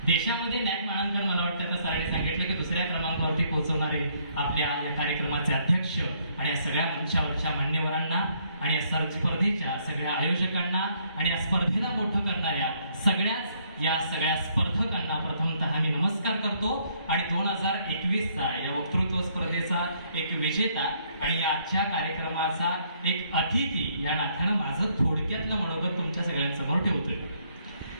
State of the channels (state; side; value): inverted; both; correlation -0.68